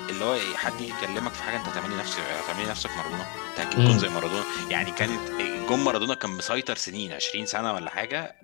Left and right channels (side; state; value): right; quieter; 32.4 dB